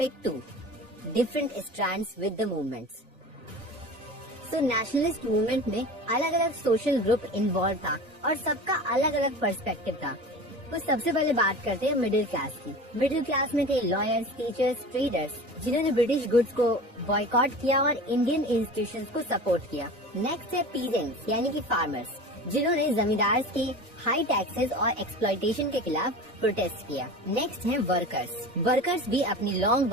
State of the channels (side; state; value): left; late; 1.8 ms